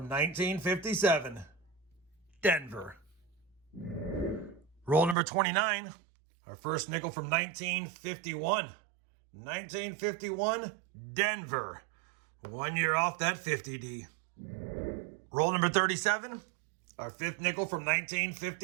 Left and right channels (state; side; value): drops out; left; at 5.2 s